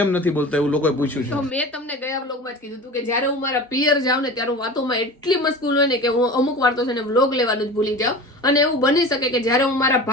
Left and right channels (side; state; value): both; normal; correlation 0.34